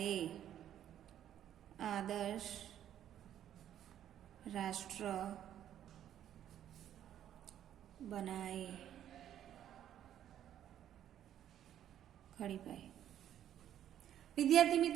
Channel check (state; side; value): quieter; left; 10.8 dB